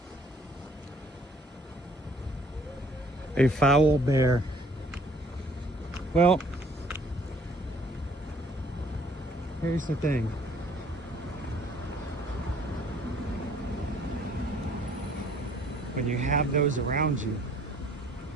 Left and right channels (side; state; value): both; normal; correlation 0.59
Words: A foul bear. Well, here's the thing. When you have those around you,